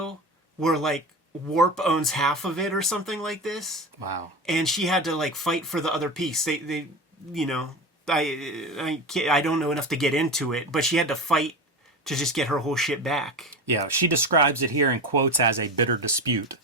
where like Warp owns half of it or something like this. Wow. And she had to like fight for the other piece. They you know, I don't know enough to get into it, but she had to fight to just get her whole shit back. Yeah, she describes it here in quotes as a bitter dispute.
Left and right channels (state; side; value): normal; both; correlation 0.26